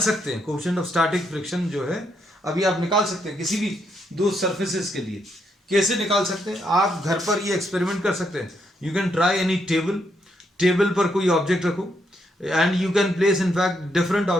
हैं। कोएफिशिएंट ऑफ स्टैटिक फ्रिक्शन जो है अभी आप निकाल सकते हैं किसी भी दो सरफेसेस के लिए। कैसे निकाल सकते हैं, आप घर पर ये एक्सपेरिमेंट कर सकते हैं। You can try any table पर कोई ऑब्जेक्ट रखो and you can place in fact different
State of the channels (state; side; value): normal; both; correlation 0.77